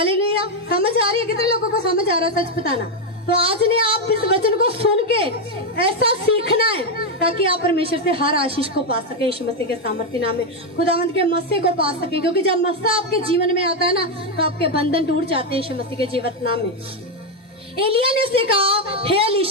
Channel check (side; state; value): both; normal; correlation 0.04